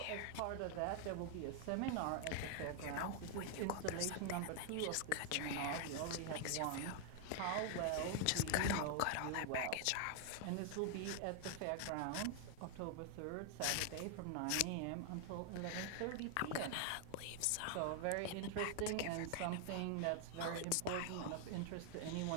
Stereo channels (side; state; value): both; different; correlation 0.00